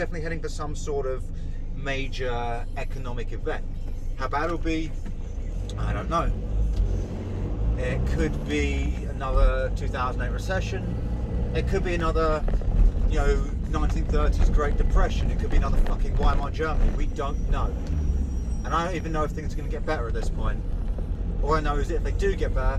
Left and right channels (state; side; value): identical; both; correlation 1.00